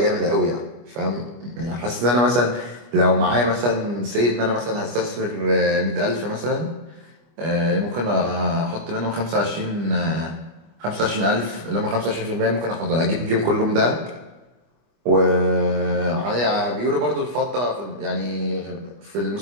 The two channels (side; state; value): left; late; 25 ms